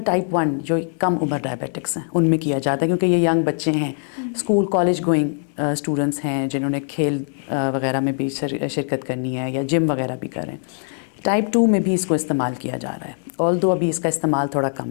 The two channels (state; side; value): silent; right; 64 dB below the other